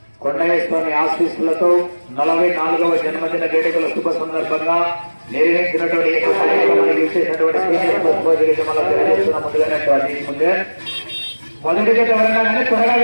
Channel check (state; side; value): inverted; both; correlation -1.00